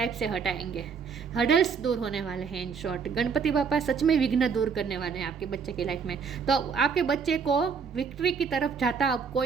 से हटाएंगे। हर्डल्स दूर होने वाले हैं। इन शॉर्ट गणपति बापा सच में विघ्न दूर करने वाले हैं आपके बच्चे की लाइफ में। तो आपके बच्चे को विक्ट्री की तरफ जाता अब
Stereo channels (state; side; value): quieter; left; 6.0 dB